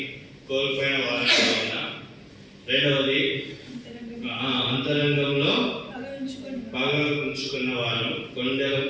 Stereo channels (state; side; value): identical; both; correlation 1.00